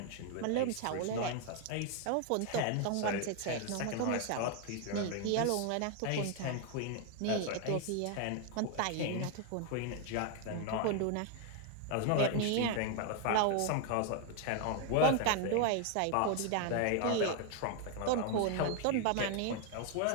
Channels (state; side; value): different; both; correlation 0.01